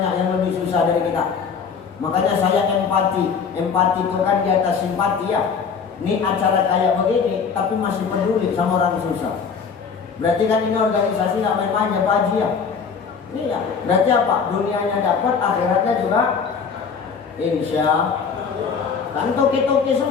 yang lebih susah dari kita. Makanya saya empati itu kan di atas simpati ya. Ini acara kayak begini, tapi masih peduli sama orang susah. Berarti kan ini organisasi nggak main-main ya Pak Haji ya. Iya. Berarti apa? Dunianya dapat, akhiratnya juga. Insya kan toki-toki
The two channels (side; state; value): right; quieter; 6.0 dB